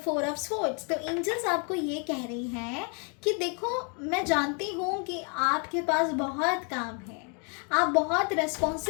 of swords. तो एंजल्स आपको ये कह रही हैं कि देखो मैं जानती हूँ कि आपके पास बहुत काम है, आप बहुत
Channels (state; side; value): quieter; right; 37.3 dB